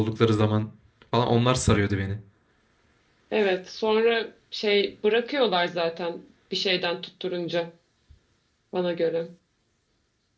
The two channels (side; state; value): both; identical; correlation 1.00